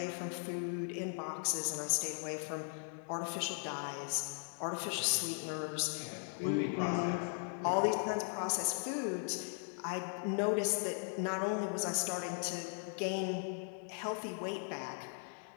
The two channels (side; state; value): right; silent; 52 dB below the other